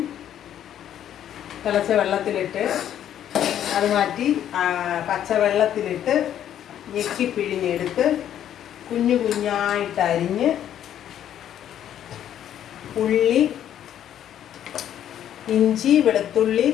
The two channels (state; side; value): quieter; right; 10.6 dB